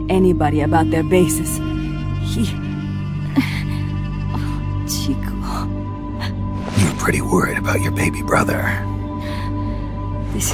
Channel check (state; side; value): identical; both; correlation 1.00